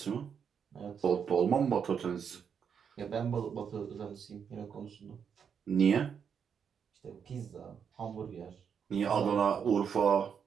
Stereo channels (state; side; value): quieter; left; 7.2 dB